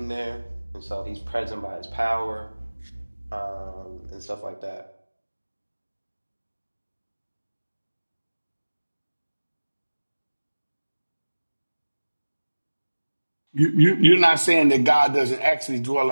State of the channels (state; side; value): inverted; both; correlation -1.00